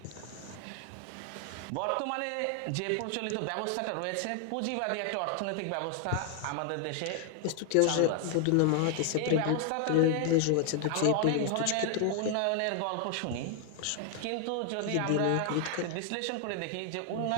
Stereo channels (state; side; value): different; both; correlation 0.00